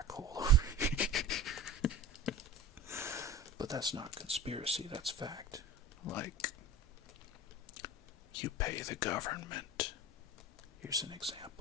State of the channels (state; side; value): normal; both; correlation 0.33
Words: hole. But that's not conspiracy, that's fact. Like, you pay the government. Here's an